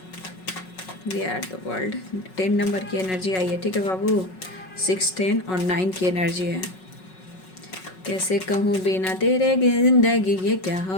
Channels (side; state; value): right; late; 5.4 ms